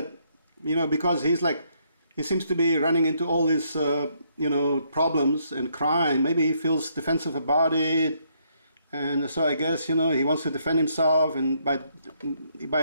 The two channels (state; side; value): inverted; both; correlation -0.72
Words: you know, because he seems to be running into all these you know, problems and crime. Maybe he feels defensive about it. And so I guess, you know, he wants to defend himself, and by